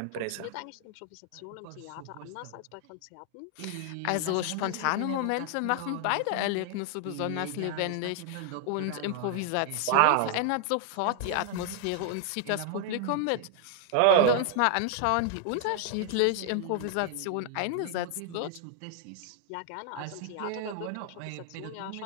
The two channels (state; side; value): different; both; correlation 0.00